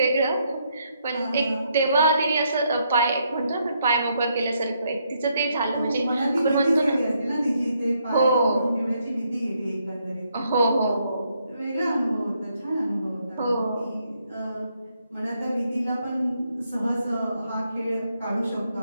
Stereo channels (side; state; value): both; inverted; correlation -0.75